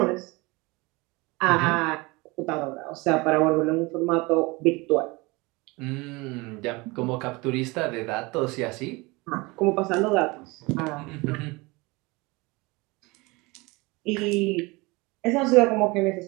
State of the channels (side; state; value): left; quieter; 24.5 dB